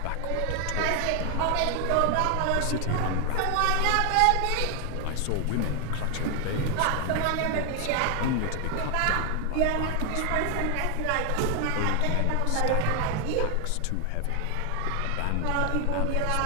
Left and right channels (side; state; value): both; different; correlation 0.00